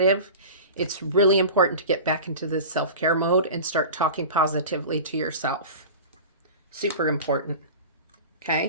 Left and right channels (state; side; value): inverted; both; correlation -0.33